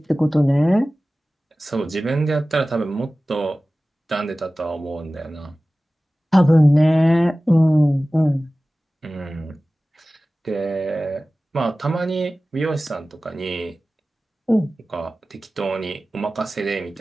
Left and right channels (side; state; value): both; normal; correlation 0.97